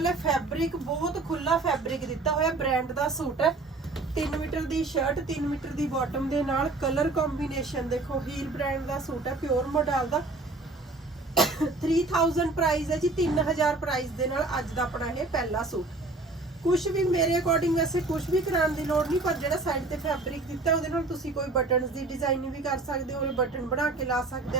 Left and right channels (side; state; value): left; quieter; 3.3 dB